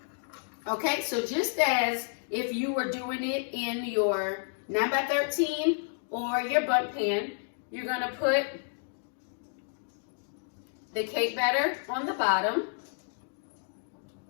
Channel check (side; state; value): right; silent; digital silence